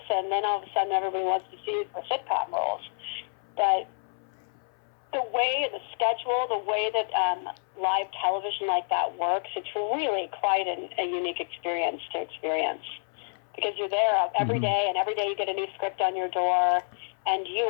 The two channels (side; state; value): right; silent; 59 dB below the other